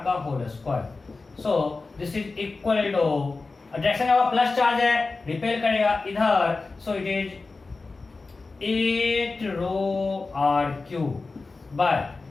का whole square. So this is equal to, direction का प्लस चार्ज है, रिपेल करेगा इधर, so it is 8 rho r cube by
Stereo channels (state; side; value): quieter; right; 3.8 dB